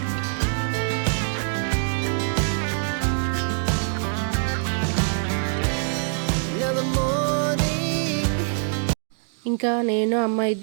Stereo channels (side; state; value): left; silent; digital silence